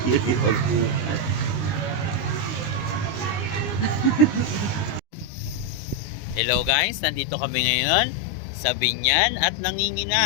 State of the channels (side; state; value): right; late; 19 ms